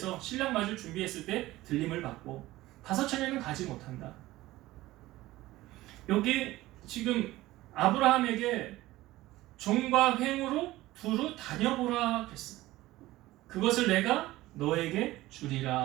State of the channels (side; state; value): left; quieter; 17.3 dB